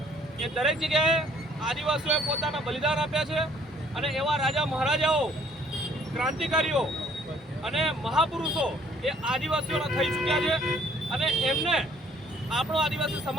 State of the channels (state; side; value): normal; both; correlation 0.60